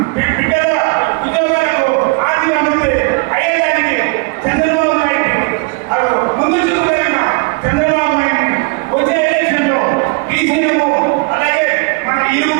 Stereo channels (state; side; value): quieter; left; 29.9 dB